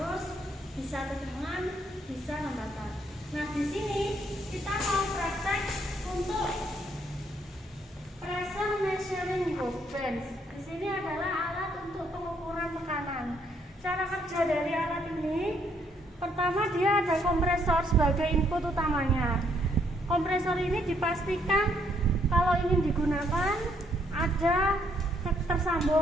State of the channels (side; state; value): both; normal; correlation 0.70